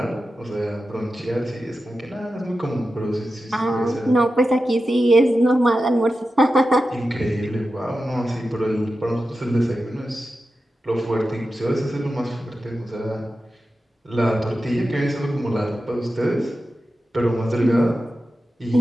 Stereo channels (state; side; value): normal; both; correlation 0.92